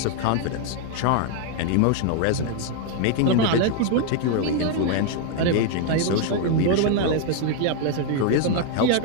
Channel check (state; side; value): different; both; correlation 0.00